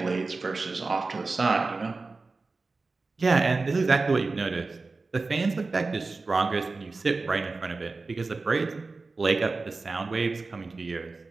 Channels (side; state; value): left; quieter; 3.8 dB